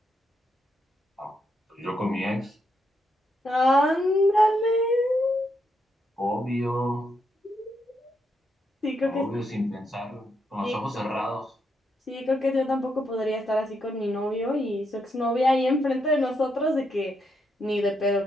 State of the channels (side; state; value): both; normal; correlation 0.79